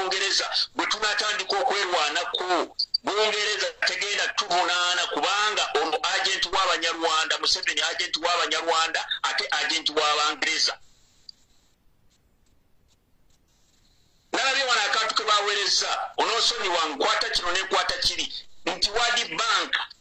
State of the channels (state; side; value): identical; both; correlation 1.00